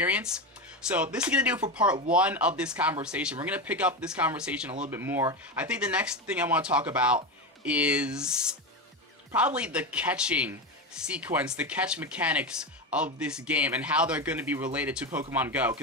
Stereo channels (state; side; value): normal; both; correlation 0.17